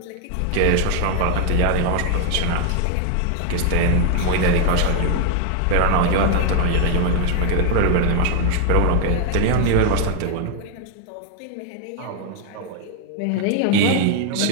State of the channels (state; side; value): different; both; correlation 0.00